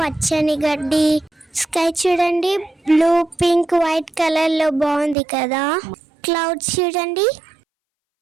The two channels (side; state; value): left; drops out; at 5.2 s